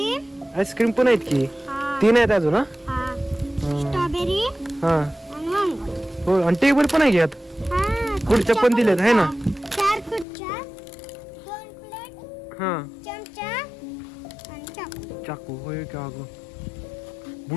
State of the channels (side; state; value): right; drops out; at 10.2 s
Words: आईस्क्रीम पण आहेत की. 3 आहेत अजून. हा स्ट्रॉबेरी हा आणि मँगो. हो, आणि टेबल पण आहे घ्यात. खुर्च्या पण दिल्यात आहे ना. 4 खुर्च्या, 2 प्लेट, हा चमचा आणि चाकू. चाकू होय का? अगं